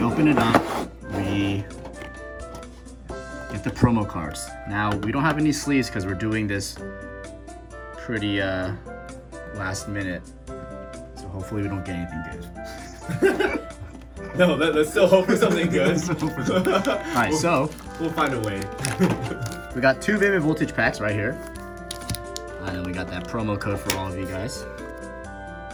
open it up, we get the promo cards. Now, we don't have any sleeves because we're doing this pretty last minute. So hopefully we don't get anything good. No, let's still hope for something good. Alright, so we'll find a way. We got two Vivid Voltage packs right here. And then we got that promo code for all of you guys.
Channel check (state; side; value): identical; both; correlation 1.00